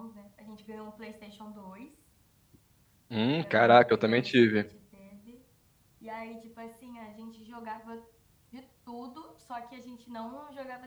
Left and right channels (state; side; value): identical; both; correlation 1.00